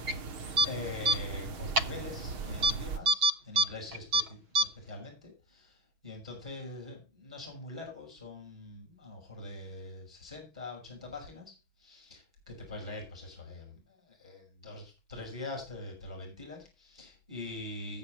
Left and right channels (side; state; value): left; late; 6.5 ms